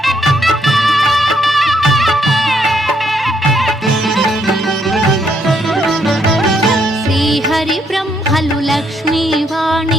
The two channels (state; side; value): normal; both; correlation 0.73